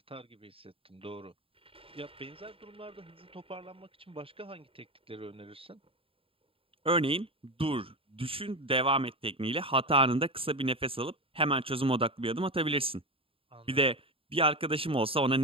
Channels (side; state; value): left; late; 0.27 ms